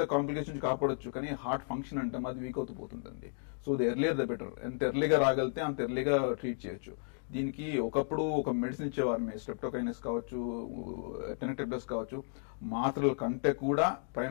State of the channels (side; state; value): right; silent; 55 dB below the other